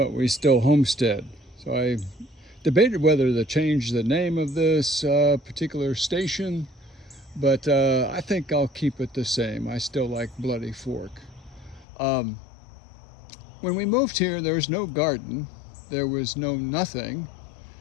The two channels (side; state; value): right; drops out; at 11.9 s